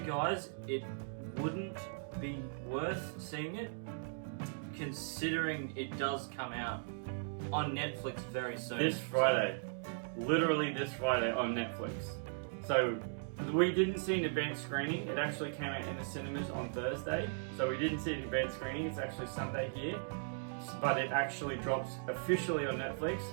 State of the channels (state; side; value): silent; left; digital silence